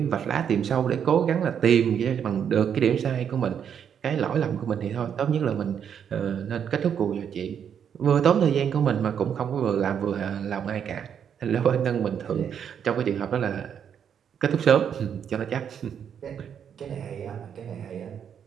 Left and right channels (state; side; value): quieter; left; 8.2 dB